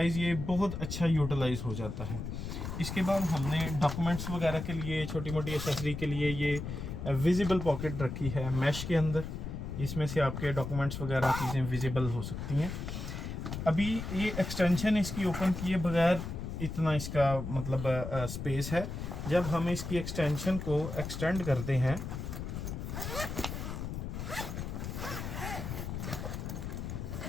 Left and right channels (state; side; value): noise; left; rumble, 6 dB below the sound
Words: ये बहुत अच्छा यूटिलाइज हो जाता है। इसके बाद हमने डॉक्यूमेंट्स वगैरह के लिए, छोटी मोटी एसेसरी के लिए ये विजिबल पॉकेट रखी है मैश के अंदर, इसमें से आपके डॉक्यूमेंट्स वगैरह चीज़ें विजिबल हो सकती हैं। अभी ये एक्सटेंशन इसकी ओपन किए बगैर इतना इसका मतलब स्पेस है। जब हम इसकी एक्सटेंशन को एक्सटेंड करते हैं